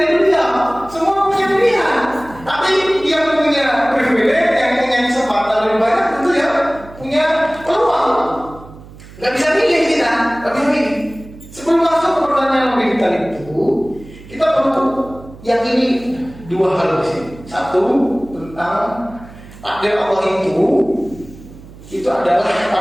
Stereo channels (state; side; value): noise; right; hum, 19 dB below the sound